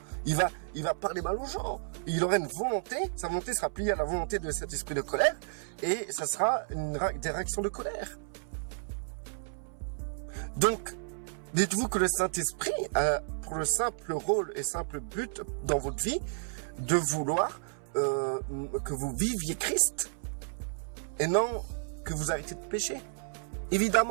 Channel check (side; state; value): left; silent; 56 dB below the other